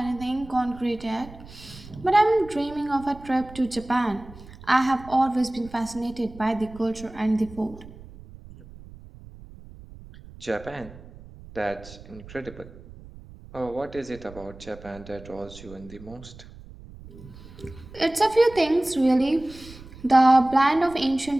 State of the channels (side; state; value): right; noise; rumble, 18 dB below the sound